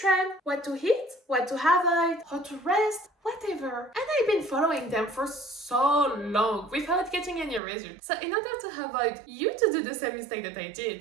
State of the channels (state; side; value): drops out; left; at 7.6 s